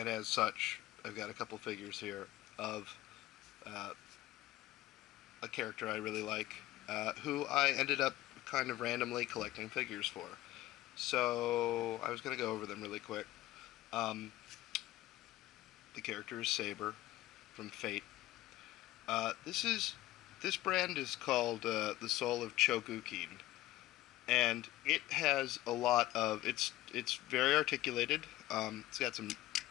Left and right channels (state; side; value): quieter; right; 16.3 dB